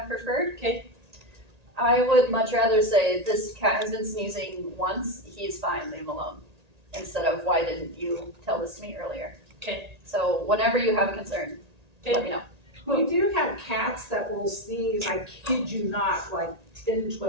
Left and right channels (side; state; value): left; late; 1.8 ms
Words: preferred. Okay. I would much rather say this cat has been sneezing once. He's fine. Leave him alone. Instead of why didn't you tell this to me earlier? Okay. So whenever you have a concern, let me know. We do have cats that will sneeze, I kid you not, like 10,